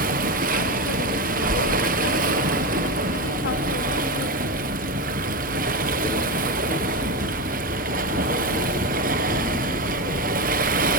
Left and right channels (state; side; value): normal; both; correlation 0.16